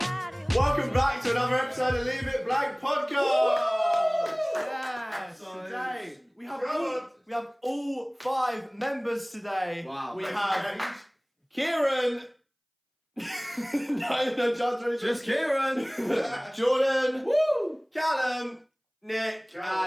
Welcome back to another episode of Leave It Blank Podcast. Yes. Today we have all 5 members today. Wow. We have Kieran. no, Just Kieran. Jordan. Woo. Callum. Nick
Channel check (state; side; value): identical; both; correlation 1.00